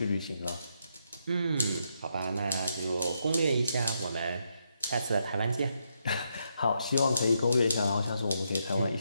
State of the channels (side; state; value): both; inverted; correlation -0.79